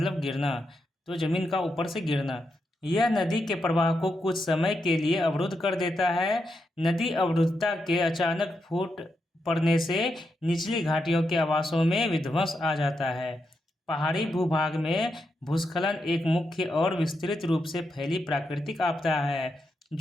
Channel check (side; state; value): both; normal; correlation 0.84